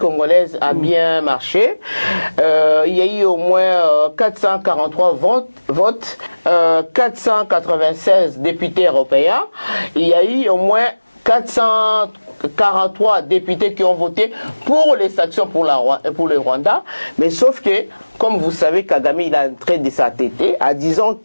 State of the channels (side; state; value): both; inverted; correlation -1.00